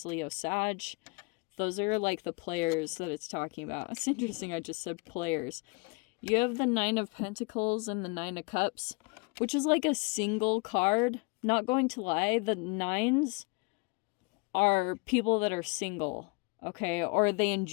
Leo, Sag. Those are like the players that it's talking about. It's interesting I just said players. You have the Nine of Pentacles and the Nine of Cups, which is like a single card. Not going to lie, the nines are people that are single, okay? Or they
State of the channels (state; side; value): quieter; right; 30.9 dB